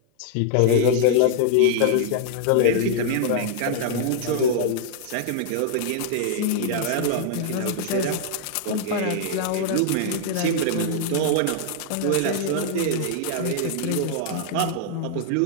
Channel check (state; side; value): different; both; correlation -0.01